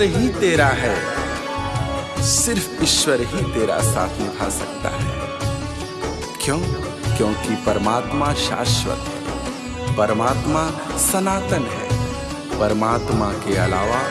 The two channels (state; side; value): identical; both; correlation 1.00